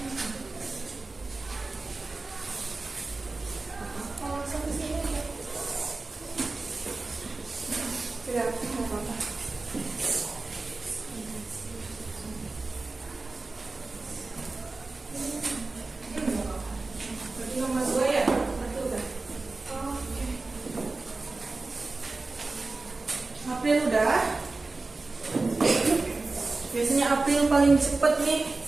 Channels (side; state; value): left; quieter; 3.5 dB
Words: Oh, sampai sini. Tidak apa-apa. Berarti nomor 2 ya? Betul kan? Oke. April udah. Biasanya April paling cepet nih.